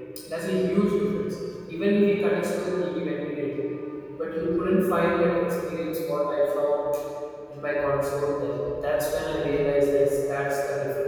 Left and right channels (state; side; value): identical; both; correlation 1.00